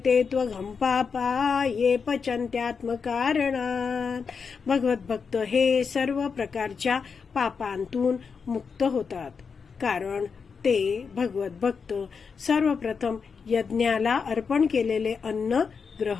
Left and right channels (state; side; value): quieter; right; 5.7 dB